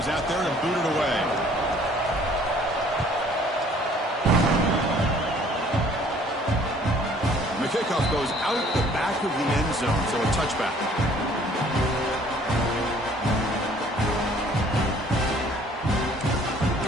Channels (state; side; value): normal; both; correlation 0.57